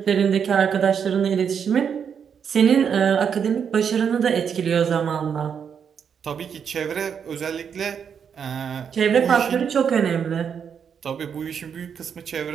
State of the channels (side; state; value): left; quieter; 7.3 dB